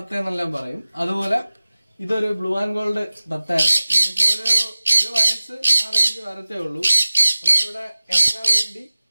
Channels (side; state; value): both; inverted; correlation -0.97